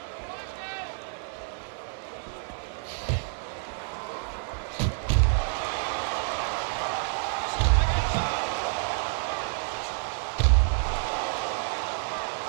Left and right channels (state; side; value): silent; left; 59 dB below the other